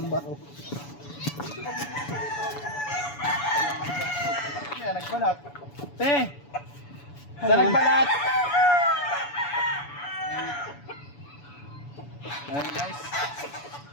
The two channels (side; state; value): right; late; 7.0 ms